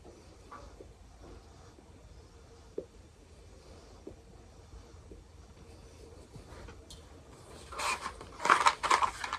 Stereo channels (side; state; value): both; identical; correlation 1.00